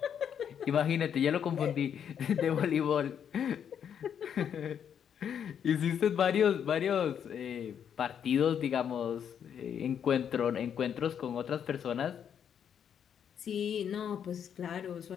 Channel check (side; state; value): right; quieter; 8.4 dB